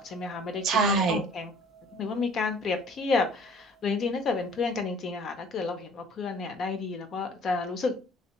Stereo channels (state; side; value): normal; both; correlation 0.53